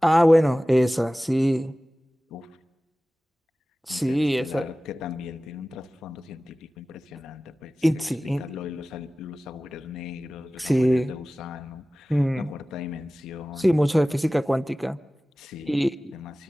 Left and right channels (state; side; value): normal; both; correlation 0.97